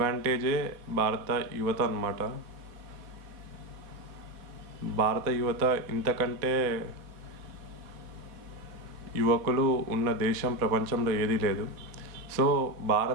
భారత యువత అన్నమాట. భారత యువత ఇంతకంటే యువకులు ఉన్న దేశం ప్రపంచంలో ఏదీ లేదు. సో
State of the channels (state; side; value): late; left; 4.1 ms